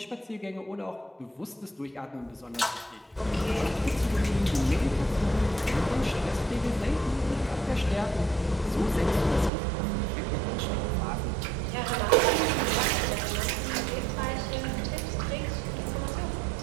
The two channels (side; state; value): left; drops out; at 9.5 s